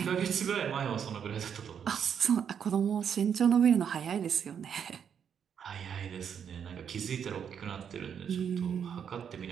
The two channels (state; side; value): quieter; left; 7.8 dB